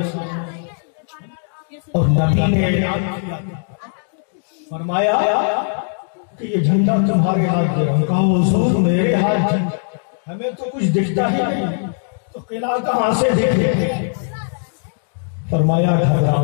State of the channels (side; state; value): right; silent; digital silence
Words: سامنے اور نبی نے اعلان کیا، فرمایا کہ یہ جھنڈا تمہارے ہاتھ میں ہے۔ کہا حضور میرے ہاتھ میں ہمیں تو کچھ دکھتا ہی نہیں، تو قلعہ کہاں سے دیکھے؟ فرمایا